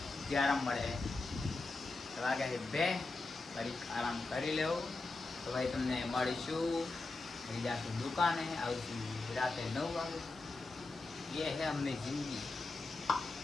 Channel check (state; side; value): quieter; right; 3.4 dB